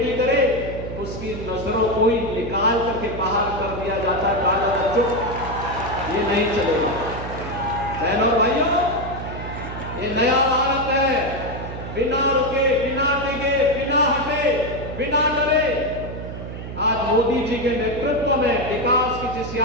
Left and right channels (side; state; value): right; noise; hum, 9 dB below the sound